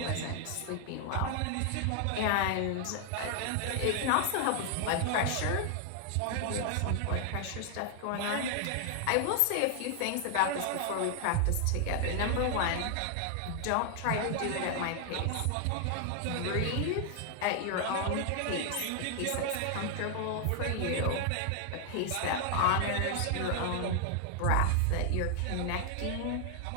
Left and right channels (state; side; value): different; both; correlation 0.00